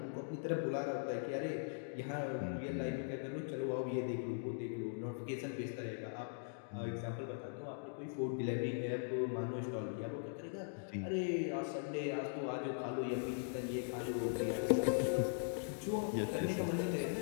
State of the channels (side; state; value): right; silent; digital silence